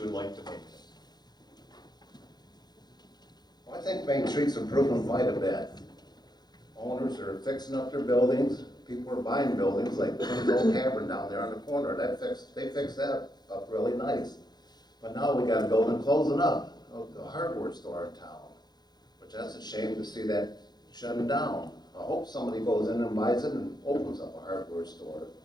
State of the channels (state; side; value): late; right; 0.20 ms